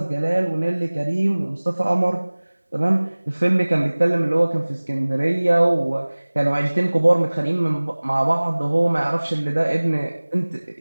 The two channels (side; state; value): both; inverted; correlation -1.00